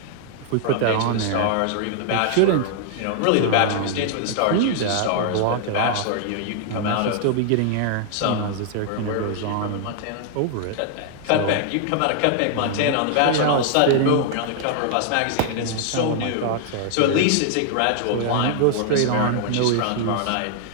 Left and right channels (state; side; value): different; both; correlation 0.00